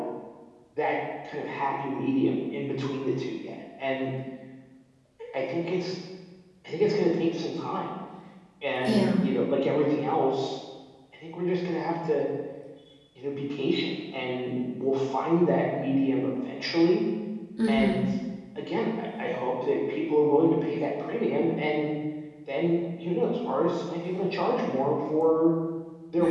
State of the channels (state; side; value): identical; both; correlation 1.00